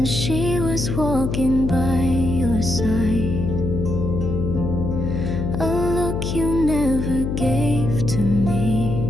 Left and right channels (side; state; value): left; noise; hum, 2 dB below the sound